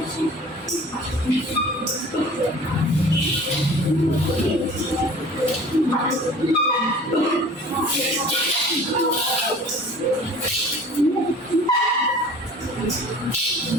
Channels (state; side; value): normal; both; correlation 0.45